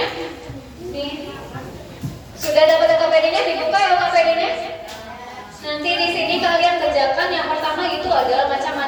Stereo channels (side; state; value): both; identical; correlation 1.00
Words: Nih. Sudah dapat LKPD-nya? Dibuka LKPD-nya. Nanti di sini kalian kerjakan. Yang pertama itu adalah